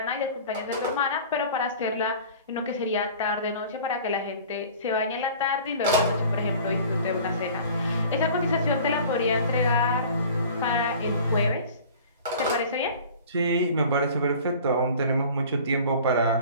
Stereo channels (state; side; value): inverted; both; correlation -0.44